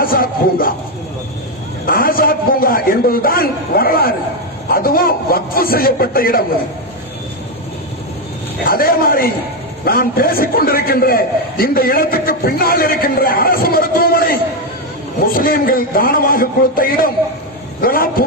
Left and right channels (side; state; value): both; normal; correlation 0.06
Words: பூங்கா. ஆசாத் பூங்கா என்பதுதான் வரலாறு. அதுவும் வக்ஃப் செய்யப்பட்ட இடம். அதே மாதிரி நான் பேசிக் கொண்டிருக்கின்ற இந்த இடத்துக்கு பின்னால் இருக்கின்ற அரசு மருத்துவமனை முஸ்லீம்கள் தானமாக கொடுத்த இடம். இதெல்லாம்